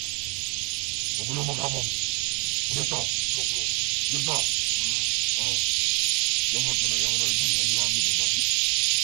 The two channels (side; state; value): left; quieter; 32.0 dB